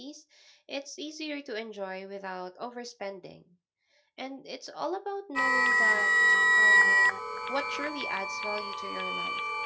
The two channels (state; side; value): identical; both; correlation 1.00